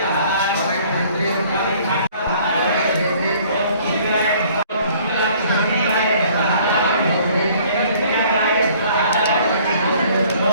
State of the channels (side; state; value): both; inverted; correlation -0.56